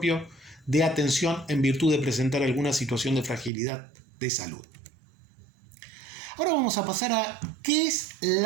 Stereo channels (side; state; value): left; drops out; at 3.5 s